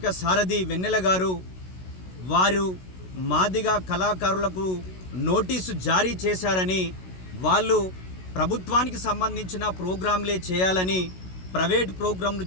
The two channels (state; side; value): late; right; 16 ms